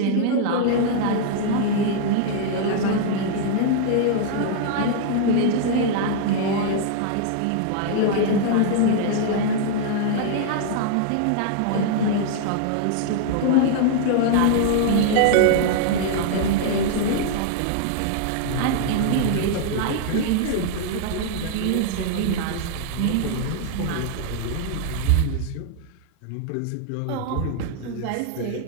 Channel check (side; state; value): both; different; correlation -0.01